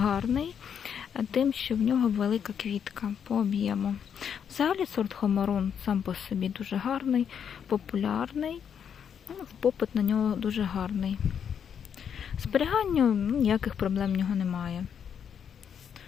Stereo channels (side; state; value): right; quieter; 7.9 dB